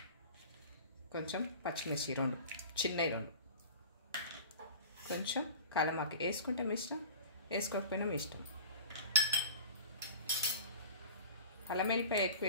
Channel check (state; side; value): inverted; both; correlation -0.40